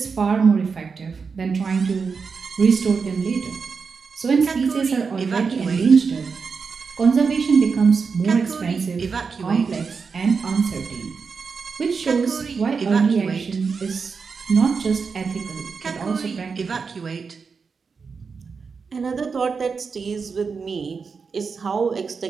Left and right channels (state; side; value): quieter; left; 5.3 dB